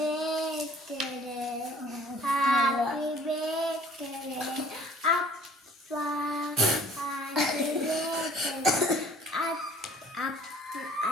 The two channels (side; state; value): both; normal; correlation 0.53